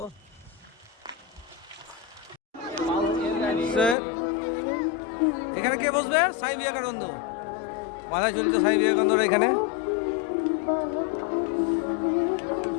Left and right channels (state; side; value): drops out; right; at 4.0 s